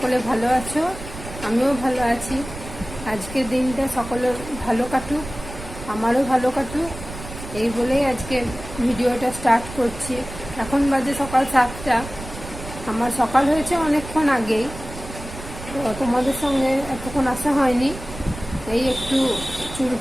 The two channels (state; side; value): noise; right; rumble, 12 dB below the sound